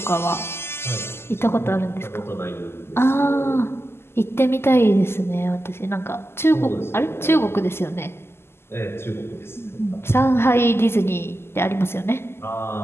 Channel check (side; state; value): right; late; 0.12 ms